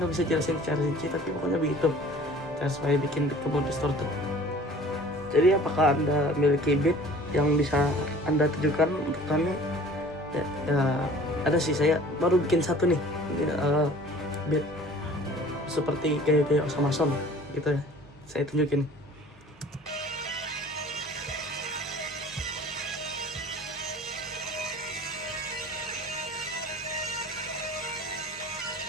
bisa jelasin secara rinci, tapi pokoknya begitu cara supaya bikin beat kamu distorted. Jadi apakah Anda memiliki beat yang bisa Anda tujukan untuk kami? Ya, ada sih, saya baru bikin satu nih, beat seperti gaya-gaya Osama Son. gitu ya. Saya tunjukin.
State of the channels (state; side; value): normal; both; correlation 0.47